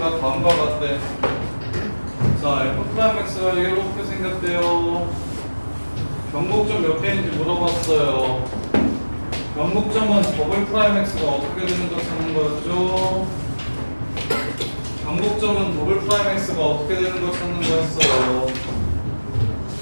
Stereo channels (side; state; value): both; inverted; correlation -1.00